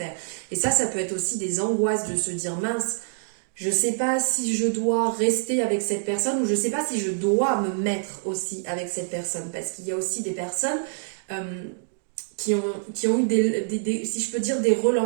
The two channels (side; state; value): left; silent; digital silence